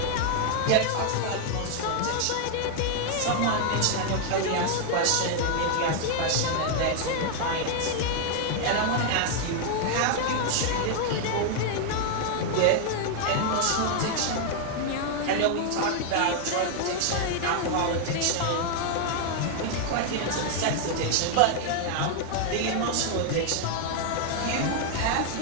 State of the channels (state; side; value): different; both; correlation 0.00